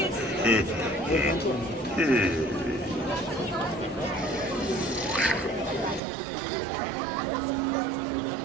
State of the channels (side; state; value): left; drops out; at 6.0 s